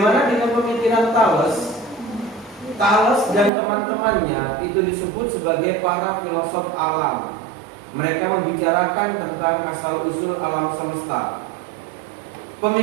dengan pemikiran Thales? Thales dan teman-temannya itu disebut sebagai para filosof alam. Mereka membicarakan tentang asal-usul alam semesta.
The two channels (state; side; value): drops out; left; at 3.5 s